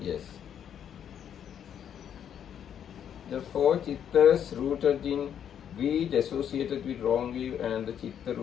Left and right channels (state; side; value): quieter; right; 9.1 dB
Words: Yes. The 4 chittas rooted in greed associated with wrong view, and the chitta